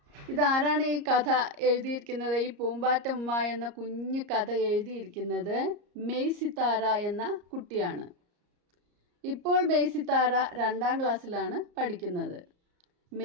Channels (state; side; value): late; left; 34 ms